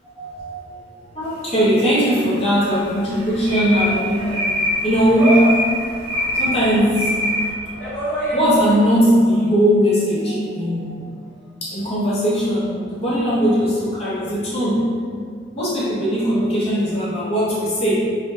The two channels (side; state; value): both; normal; correlation 0.58